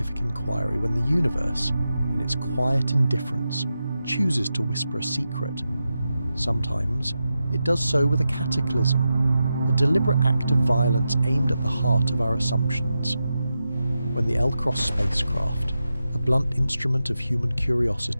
inquiry when the universe, in its quiet indifference, chooses to whisper a secret. Sometimes it does so with a cataclysm, a deliberate act of violence aimed at the heart of our assumptions. When the L-Cross spacecraft, a blunt instrument of human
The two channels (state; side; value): inverted; both; correlation -0.90